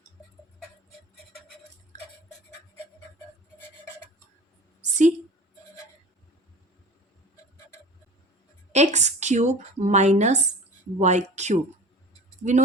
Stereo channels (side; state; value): both; normal; correlation 0.39